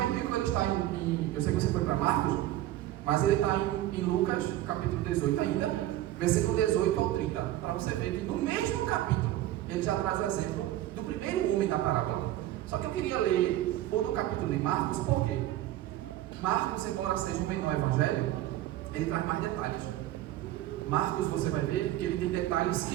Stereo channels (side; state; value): left; quieter; 14.3 dB